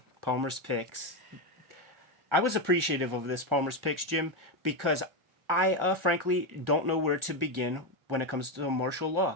Palmer's Picks. I was appreciative of this Palmer's Picks, Jim, because I frankly don't know where to begin when it comes to martial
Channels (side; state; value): left; late; 1.1 ms